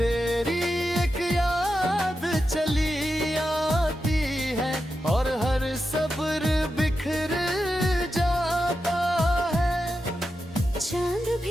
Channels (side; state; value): both; normal; correlation 0.89